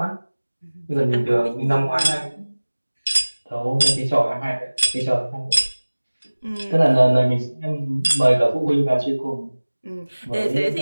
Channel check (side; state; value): both; inverted; correlation -1.00